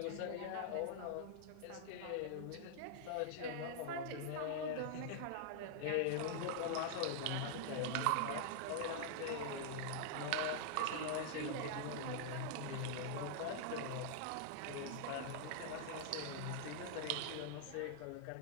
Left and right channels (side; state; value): both; different; correlation -0.01